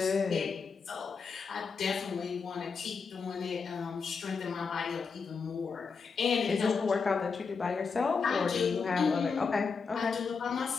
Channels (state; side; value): quieter; right; 5.2 dB